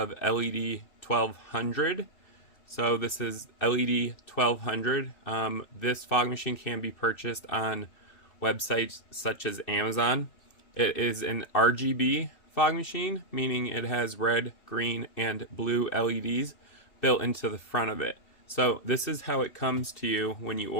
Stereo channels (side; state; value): right; late; 2.6 ms